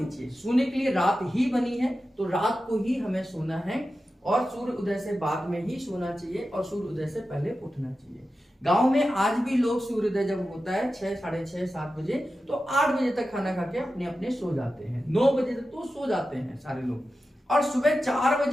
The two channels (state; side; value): normal; both; correlation 0.92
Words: चाहिए। सोने के लिए रात ही बनी है, तो रात को ही हमें सोना है और सूर्य उदय से बाद में ही सोना चाहिए और सूर्य उदय से पहले उठना चाहिए। गांव में आज भी लोग सूर्योदय जब होता है 6, साढ़े 6, 7 बजे, तो 8 बजे तक खाना खा के अपने अपने सो जाते हैं। 9 बजे तक तो सो जाते हैं सारे लोग, और सुबह 4